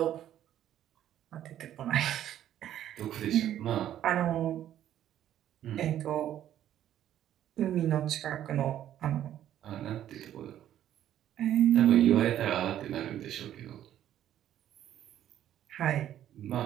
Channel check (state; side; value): quieter; left; 11.5 dB